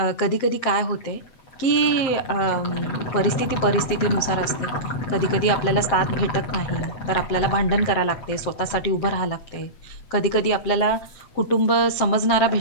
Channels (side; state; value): right; late; 7.7 ms